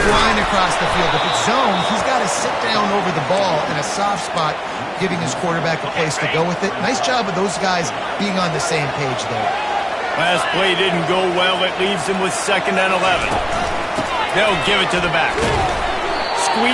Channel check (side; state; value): both; identical; correlation 1.00